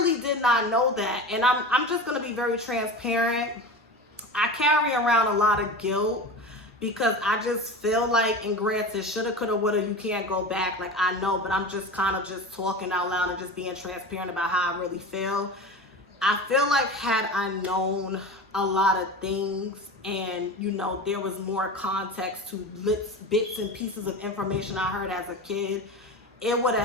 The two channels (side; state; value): both; normal; correlation 0.30